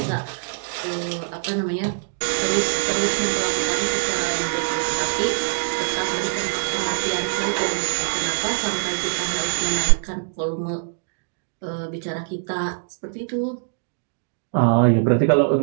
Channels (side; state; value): left; silent; digital silence